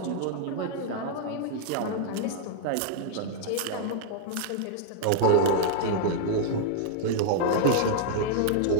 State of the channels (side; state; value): both; different; correlation -0.01